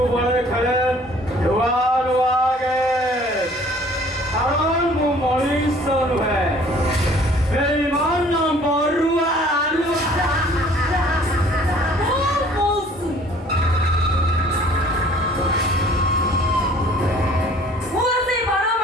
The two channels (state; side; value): normal; both; correlation 0.54